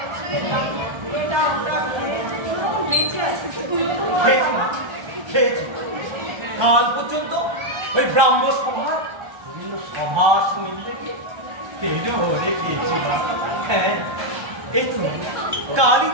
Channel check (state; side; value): late; left; 1.3 ms